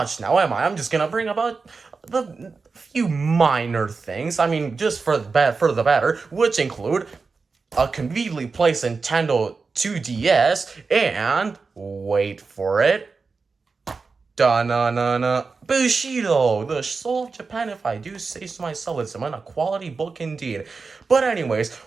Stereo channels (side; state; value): left; quieter; 4.5 dB